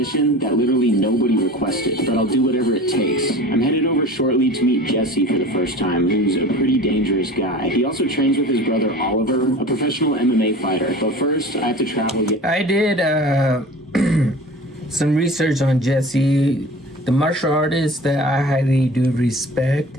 that literally nobody requested, but I'll do whatever it takes. I'm headed over shortly to meet Jesse for the first time, who's a pretty dangerous guy. He also trains with his brother Oliver, a professional MMA fighter, but first I have to travel yet. I did some research on Jesse, the martial artist that I highly do respect,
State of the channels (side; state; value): both; normal; correlation 0.39